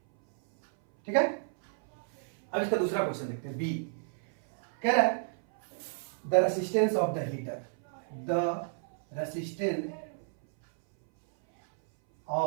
ठीक है। अब इसका दूसरा क्वेश्चन देखते हैं, बी कह रहा है the resistance of the heater, the resistance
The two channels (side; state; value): left; silent; 57 dB below the other